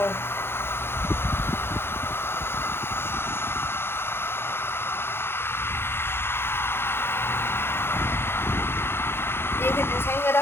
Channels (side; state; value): right; late; 0.11 ms